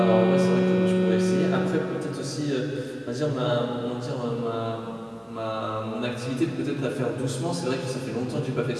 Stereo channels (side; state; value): both; identical; correlation 1.00